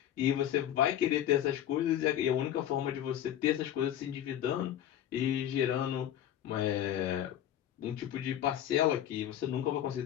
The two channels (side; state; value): right; quieter; 11.2 dB